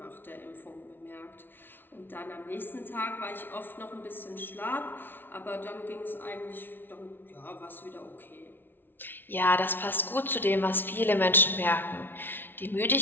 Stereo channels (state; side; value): late; right; 0.10 ms